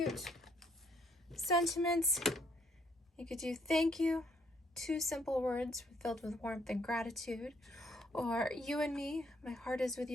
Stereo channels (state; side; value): normal; both; correlation 0.68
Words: sentiments. You could do thank you, two simple words filled with warmth and gratitude, or you and me, my heart is with